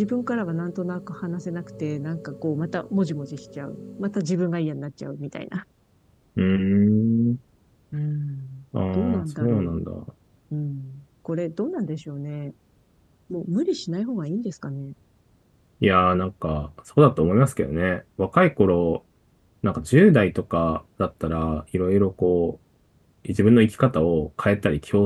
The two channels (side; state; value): both; identical; correlation 1.00